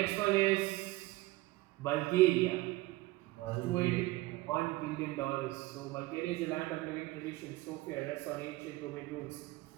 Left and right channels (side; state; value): left; quieter; 19.4 dB